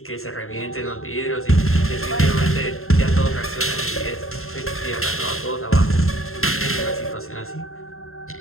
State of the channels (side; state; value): right; late; 0.62 ms